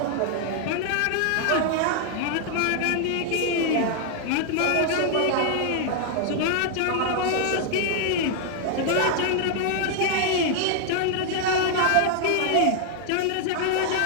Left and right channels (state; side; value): different; both; correlation 0.00